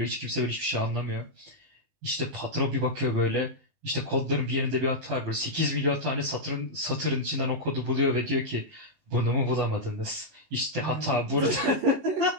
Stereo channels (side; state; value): left; late; 19 ms